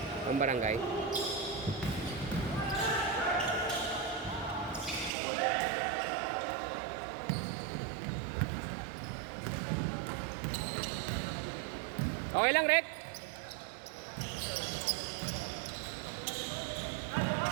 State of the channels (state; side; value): drops out; left; at 5.1 s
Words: Ang barangay. Okay lang, Rek?